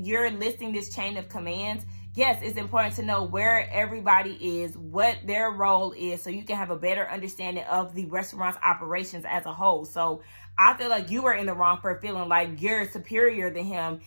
listing this chain of commands. Yes, it's important to know where everybody is, what their role is, so you can have a better understanding of the restaurant's operations as a whole. So I feel like you were in the wrong for feeling like you're superior than him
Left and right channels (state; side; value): inverted; both; correlation -1.00